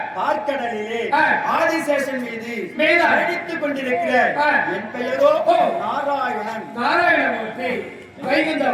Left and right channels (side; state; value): both; identical; correlation 1.00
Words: பார்க்கடலிலே ஆதிசேஷன் மீது அடித்துக் கொண்டிருக்கிற என் பெயரோ நாராயணன். நாராயணமூர்த்தி